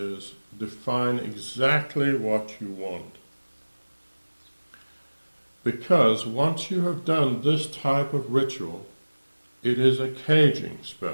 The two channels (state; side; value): inverted; both; correlation -1.00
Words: define exactly what you want. Because once you have done this type of ritual, it is a caging